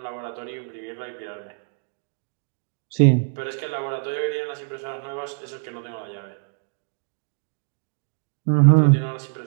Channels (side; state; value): left; silent; digital silence